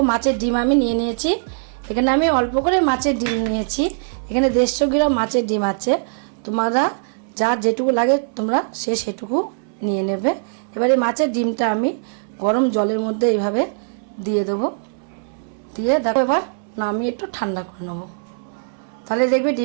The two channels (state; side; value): silent; left; 65 dB below the other